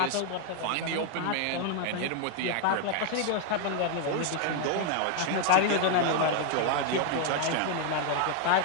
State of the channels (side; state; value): both; different; correlation 0.00